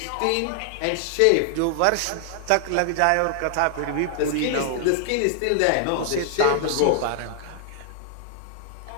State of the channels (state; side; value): different; both; correlation 0.00